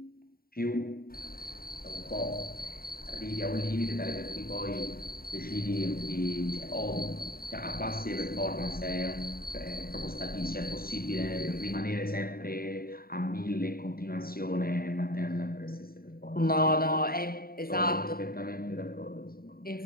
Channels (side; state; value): right; late; 0.43 ms